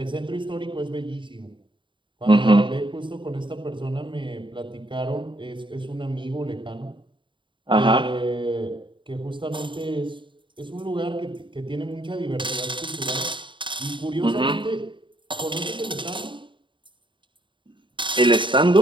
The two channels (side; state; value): left; late; 0.23 ms